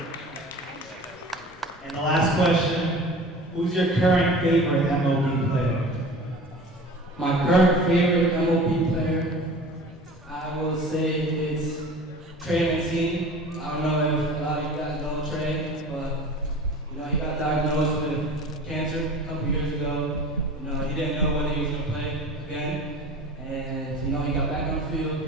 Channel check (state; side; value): normal; both; correlation 0.39